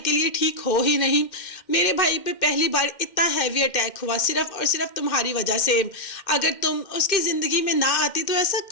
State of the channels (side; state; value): right; late; 2.1 ms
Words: लिए ठीक हो ही नहीं। मेरे भाई पे पहली बार इतना हैवी अटैक हुआ सिर्फ और सिर्फ तुम्हारी वजह से। अगर तुम उसकी ज़िंदगी में ना आती तो ऐसा